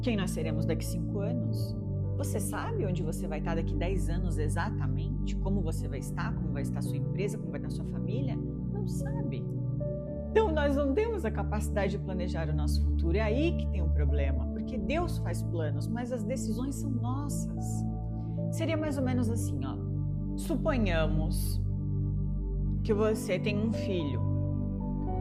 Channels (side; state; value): both; identical; correlation 1.00